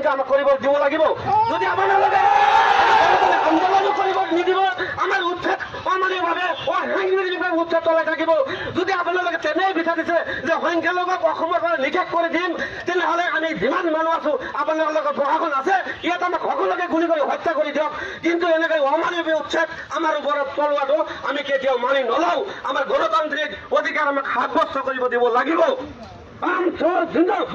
আমাক কৰিব দিব লাগিব। যদি আপোনালোকে আন্দোলন কৰিব নিদিব, আমাৰ উচ্ছেদ অমানৱীয়ভাৱে অসাংবিধানিকভাৱে উচ্ছেদ চলাই থাকিব। যদি আপোনালোকে তেনেই বিচাৰিছে যে সংখ্যালঘুক অসমৰ পৰা নিষেধ কৰি দিম, তেনেহ'লে আমি যিমান মানুহ আছো আপোনালোকৰ প্ৰশাসন আছে, ইয়াত আমাক সকলোকে গুলি কৰি হত্যা কৰি দিয়ক। কিন্তু এনেকৈ অমানৱীয় উচ্ছেদ আমাৰ ওপৰত চলোৱাটো আমি কেতিয়াও মানি নলওঁ। আমাৰ গণতান্ত্ৰিক অধিকাৰ আমাক সাব্যস্ত কৰিব দিব লাগিব।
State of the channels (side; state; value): both; identical; correlation 1.00